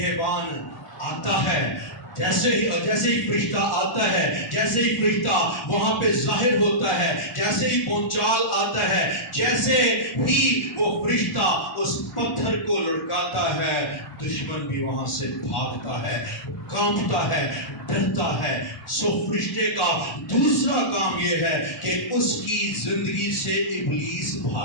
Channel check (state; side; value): late; right; 1.4 ms